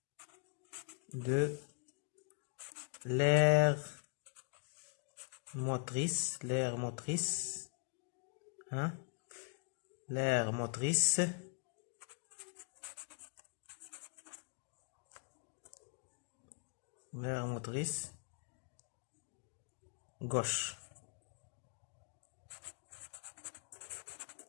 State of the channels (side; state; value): right; quieter; 39.3 dB